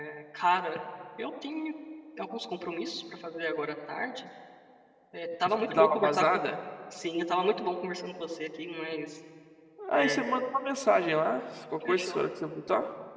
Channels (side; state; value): both; identical; correlation 1.00